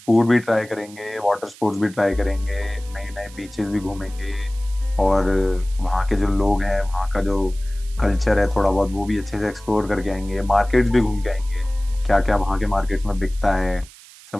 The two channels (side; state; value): right; noise; hiss, 21 dB below the sound